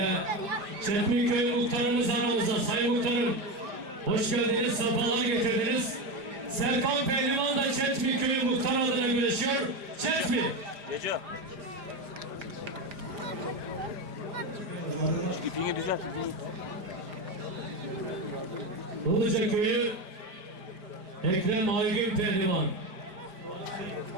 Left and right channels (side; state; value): left; late; 4.9 ms